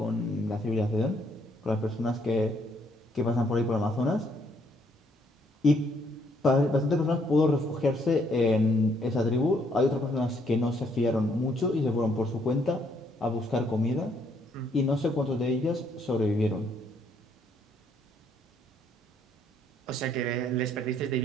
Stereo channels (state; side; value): normal; both; correlation 0.69